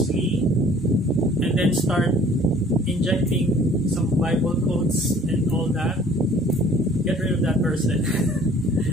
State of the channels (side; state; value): both; normal; correlation 0.53